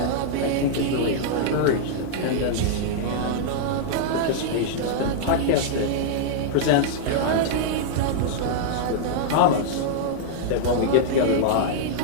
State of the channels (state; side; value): different; both; correlation -0.01